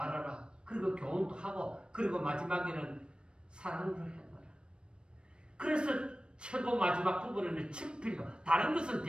그리고 교훈도 하고, 그리고 마지막에는 사랑을 해놔라. 그래서 최고 마지막 부분에는 친필로, 다른 것은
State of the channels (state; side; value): late; left; 0.055 ms